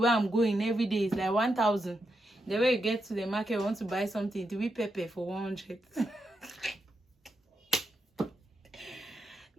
I'm going every day, it's like 1,000. The way you get to the market, you want to buy something, to be pepper for 100.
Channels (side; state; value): both; normal; correlation 0.84